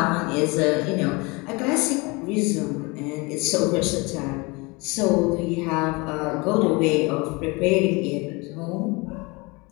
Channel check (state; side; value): quieter; right; 26.6 dB